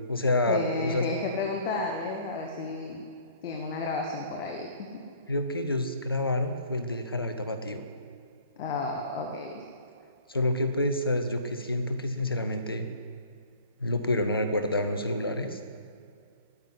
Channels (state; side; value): inverted; both; correlation -0.53